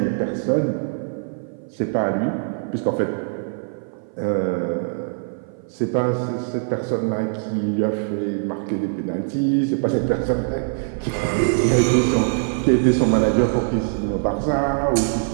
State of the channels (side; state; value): left; silent; 55 dB below the other